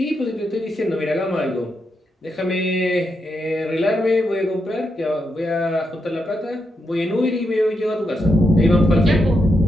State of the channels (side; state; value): both; normal; correlation 0.83